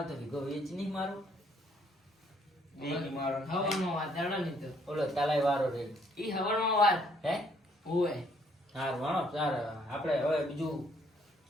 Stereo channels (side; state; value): both; normal; correlation 0.66